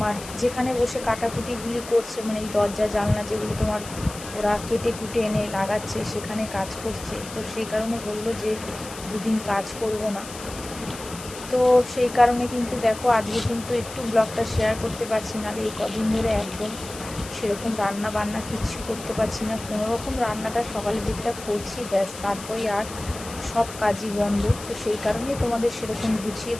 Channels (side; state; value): left; noise; hiss, 13 dB below the sound